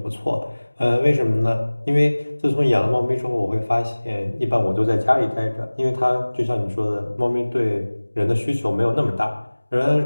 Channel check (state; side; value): inverted; both; correlation -1.00